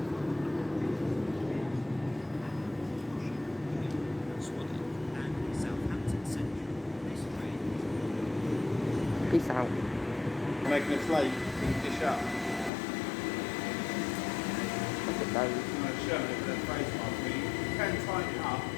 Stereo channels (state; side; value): drops out; right; at 12.7 s